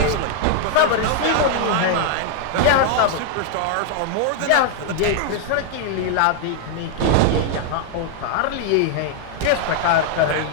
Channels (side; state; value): both; different; correlation 0.00